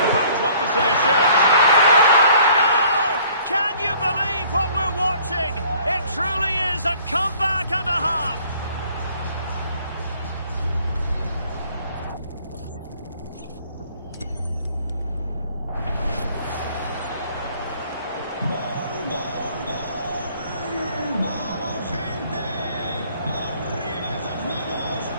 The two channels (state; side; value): inverted; both; correlation -0.57